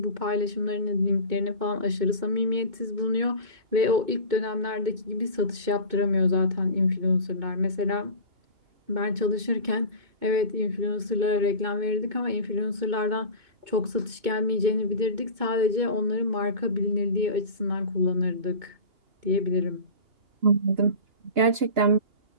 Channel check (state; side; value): late; left; 2.2 ms